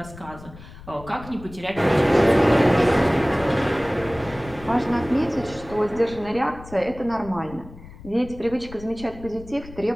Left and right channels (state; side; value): noise; left; rumble, 17 dB below the sound